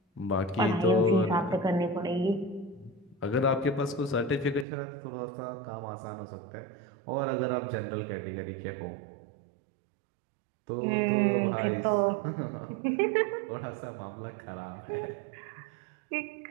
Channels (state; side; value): drops out; left; at 4.7 s